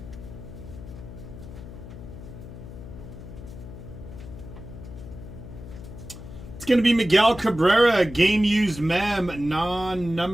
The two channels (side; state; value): left; noise; hum, 13 dB below the sound